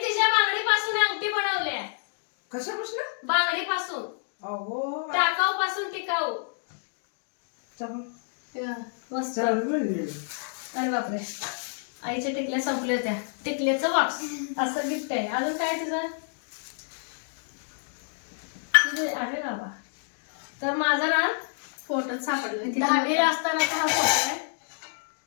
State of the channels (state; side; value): silent; right; digital silence